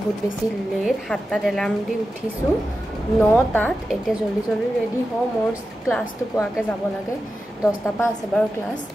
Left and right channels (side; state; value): both; normal; correlation 0.92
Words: বেছি লেট 7টাত এলাৰ্ম দি উঠিছো 9টাত এতিয়া জলদি ৰেডি হও মোৰ ক্লাছটো পোৱাকে যাব লাগে 10টা পা আছে বাৰু ক্লাছ